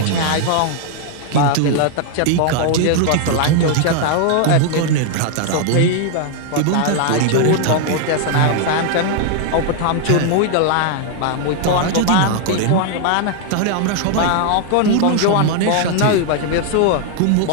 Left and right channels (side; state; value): both; different; correlation 0.00